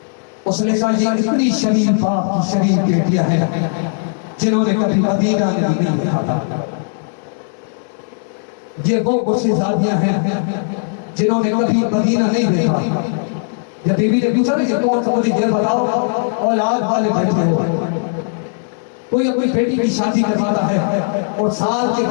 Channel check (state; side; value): silent; right; 63 dB below the other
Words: उसने कहा ये इतनी शरीफ बाप की शरीफ बेटियां हैं जिन्होंने कभी मदीना नहीं देखा था। ये वो गुस्सेज़ादियां हैं जिन्होंने कभी मदीना नहीं देखा। जब बीबी ने पूछा ये कौन सा, मुझे ये बताओ, औलाद वाले बैठे हो, कोई अपनी बेटी की शादी करवाता है और साल के